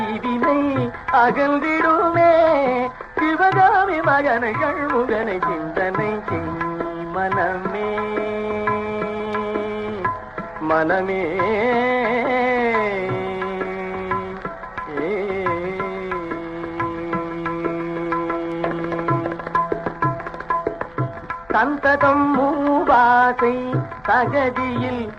அகன்றிடுமே, சிவகாமி மகனை சண்முகனை சிந்தனை செய் மனமே. மனமே சந்ததம் மூவாசை தகதியில்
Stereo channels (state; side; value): noise; left; hum, 28 dB below the sound